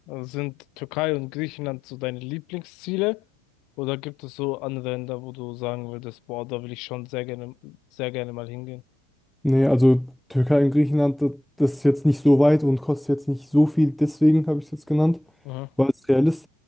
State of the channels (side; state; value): both; normal; correlation 0.92